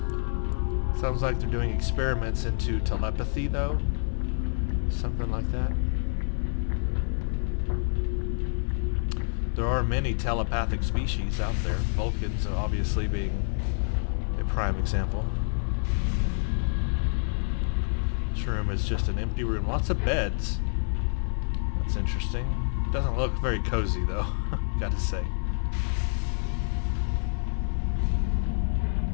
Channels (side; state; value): right; silent; 59 dB below the other